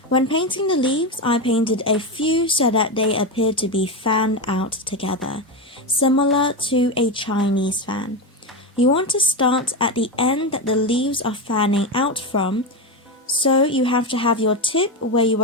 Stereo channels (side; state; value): both; normal; correlation 0.14